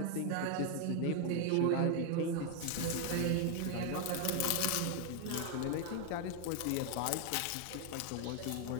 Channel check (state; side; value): different; both; correlation 0.00